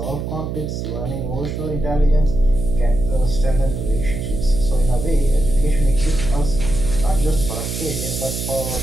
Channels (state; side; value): noise; right; hum, 5 dB below the sound